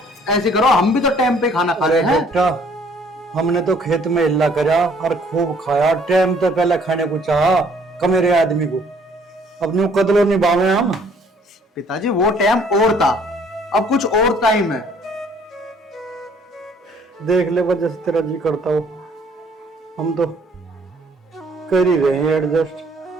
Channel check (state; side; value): normal; both; correlation 0.60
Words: ऐसे करो, हम भी तो टाइम पे खाना खा रहे हैं। बेटा, हमने तो खेत में हिल्ला करा और खूब खाया, टाइम तो पहले खाने को चाहा कमेरे आदमी को, अब न्यू कदलो निभावे हम। पिताजी वो टाइम और था, अब कुछ और टाइम है। देख ले वजह से तेरा जी करता हो, हम तो कर ही रहे हैं एडजस्ट।